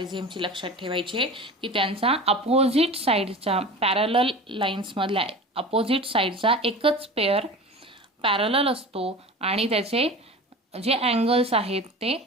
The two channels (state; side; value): normal; both; correlation 0.35